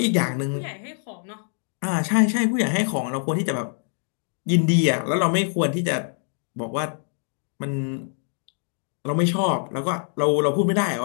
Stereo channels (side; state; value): right; silent; 62 dB below the other